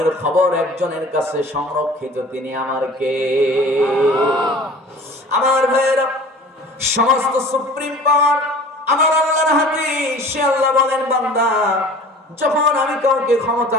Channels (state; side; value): normal; both; correlation 0.44